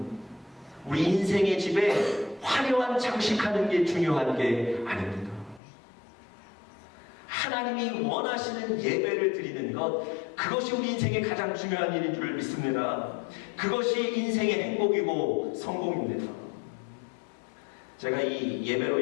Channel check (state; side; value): drops out; right; at 5.6 s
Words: 우리 인생의 집에 화려한 장식하는 게 중요한 게 아닙니다. 하나님이 원하시는 예배를 드리는 것, 그것이 우리 인생의 가장 중요한 일인 줄 믿습니다. 그것이 인생의 행복이고 성공입니다. 제가 이 예배로